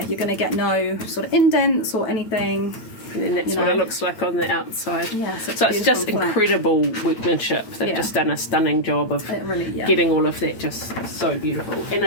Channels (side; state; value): right; late; 8.8 ms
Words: You're going to get no sort of indents or anything. And then that's what it looks like on the outside. Yeah, so it's just incredible workmanship. They've just done a stunning job of getting all of that just so beautiful. And